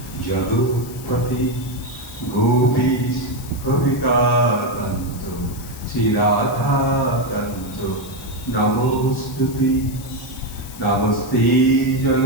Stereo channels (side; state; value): left; noise; hiss, 17 dB below the sound